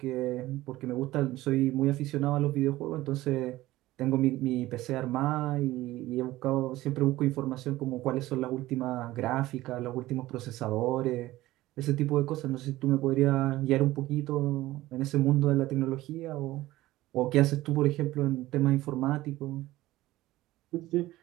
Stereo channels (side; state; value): left; quieter; 16.9 dB